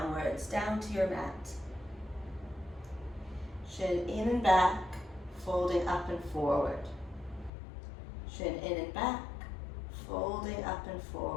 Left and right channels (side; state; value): right; drops out; at 7.5 s